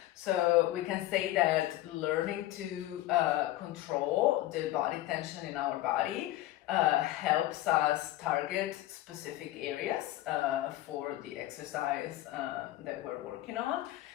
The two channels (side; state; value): right; quieter; 15.4 dB